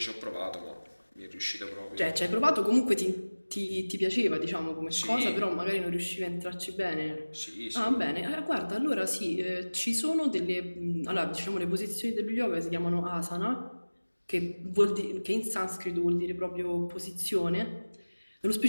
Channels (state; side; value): inverted; both; correlation -1.00